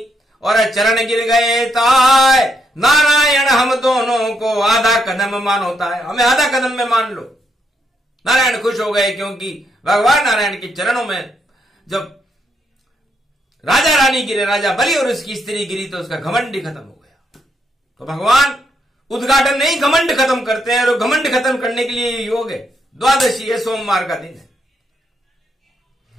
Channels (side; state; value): both; normal; correlation 0.77